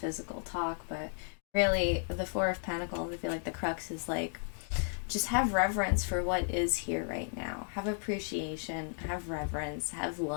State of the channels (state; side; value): silent; right; 55 dB below the other